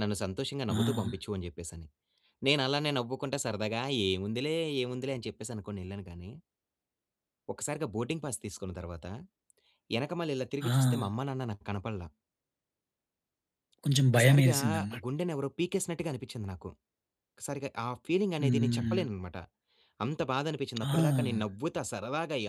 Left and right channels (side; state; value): both; identical; correlation 1.00